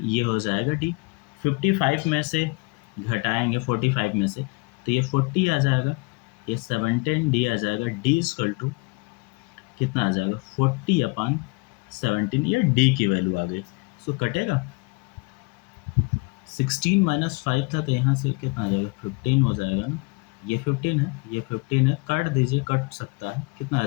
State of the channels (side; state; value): right; quieter; 27.8 dB